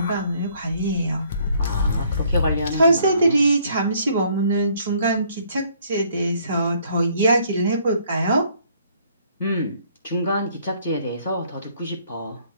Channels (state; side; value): inverted; both; correlation -0.63